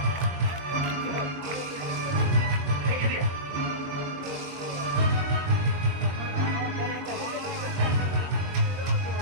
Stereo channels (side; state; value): left; late; 21 ms